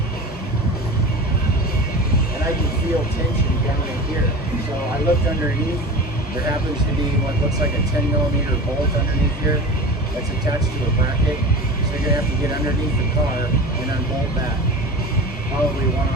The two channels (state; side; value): normal; both; correlation 0.33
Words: I can feel tension down in here. So I looked underneath. There happens to be what looks like a 10mm bolt underneath here that's attached to a bracket. So you're gonna have to get underneath the car and unbolt that. Probably one